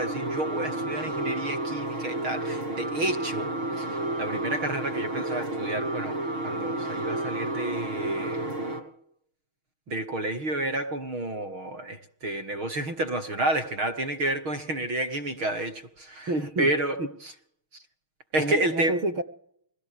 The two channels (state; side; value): late; left; 6.4 ms